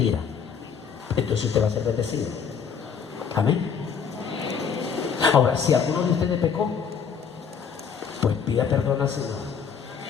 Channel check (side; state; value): right; quieter; 6.7 dB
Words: Entonces usted va a ser bendecido. Amén. Ahora, si alguno de ustedes pecó, pues pida perdón al Señor.